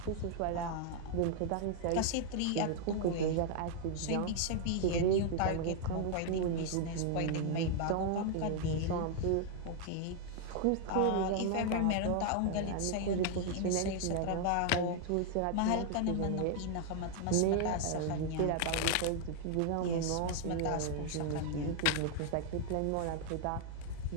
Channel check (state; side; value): different; both; correlation 0.00